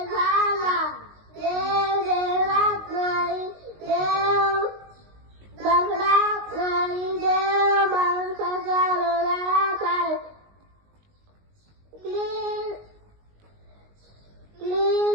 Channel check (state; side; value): late; left; 19 ms